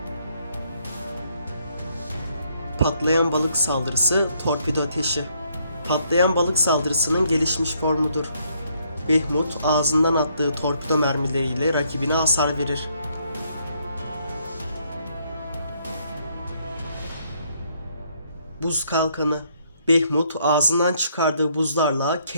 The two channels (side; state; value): both; inverted; correlation -0.70